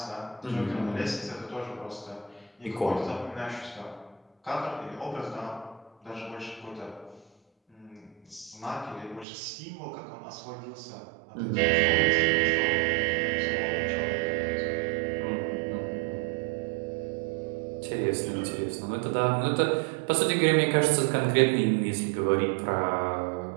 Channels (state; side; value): drops out; left; at 9.2 s